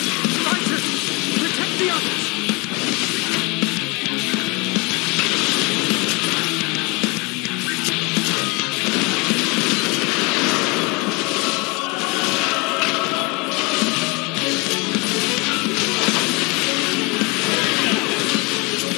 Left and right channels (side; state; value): right; quieter; 28.0 dB